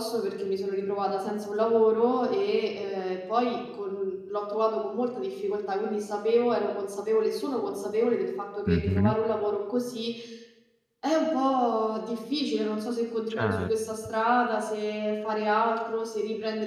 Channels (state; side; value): identical; both; correlation 1.00